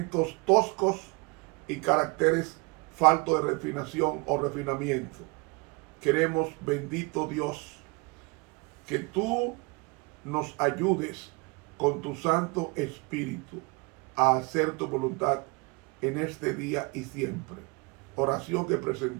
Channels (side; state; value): left; quieter; 27.8 dB